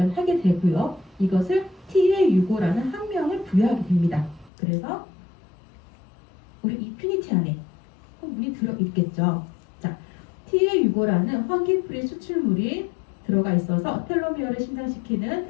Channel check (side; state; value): right; drops out; at 4.5 s